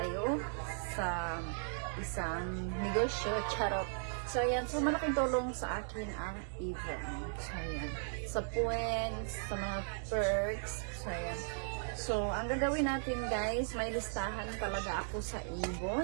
sa isang negosyo, charot. So, ayan. So, malaking tulong sa akin ang Avon. So, ayan. Sa points, sa mga perks. So, ayan. So, ang gagawin natin, guys, may listahan talaga ako sa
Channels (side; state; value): left; silent; digital silence